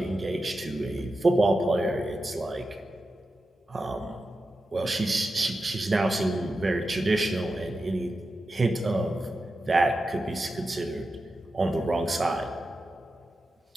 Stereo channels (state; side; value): normal; both; correlation 0.91